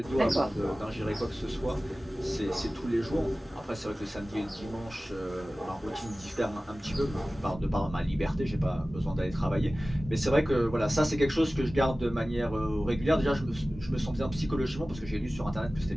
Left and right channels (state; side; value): normal; both; correlation 0.97